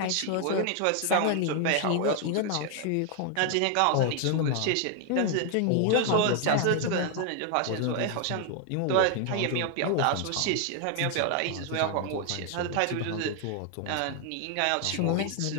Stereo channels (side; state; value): both; different; correlation 0.00